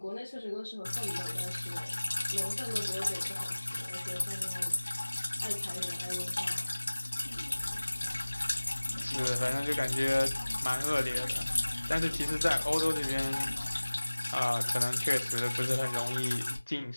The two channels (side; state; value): both; inverted; correlation -1.00